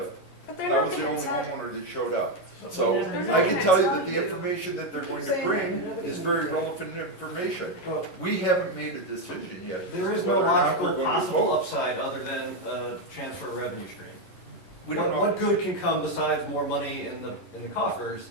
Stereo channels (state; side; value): late; right; 11 ms